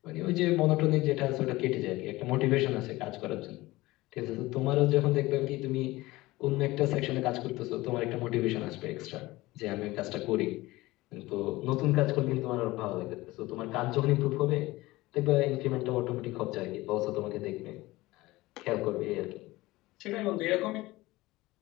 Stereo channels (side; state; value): right; quieter; 19.5 dB